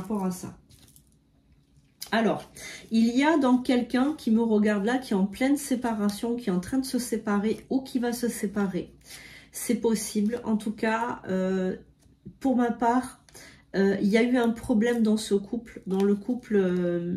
à ça. Alors, il y a donc quelqu'un qui me regarde là, qui est en pleine séparation, qui est en train de se séparer ou qui va se séparer. C'est possible. En tout cas, pour ma part, il y a eu un problème dans ce couple, dans le couple.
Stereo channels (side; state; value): both; identical; correlation 1.00